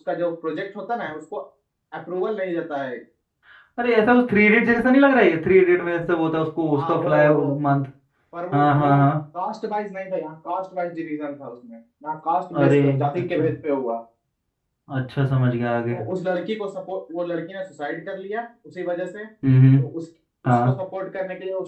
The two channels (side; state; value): both; identical; correlation 1.00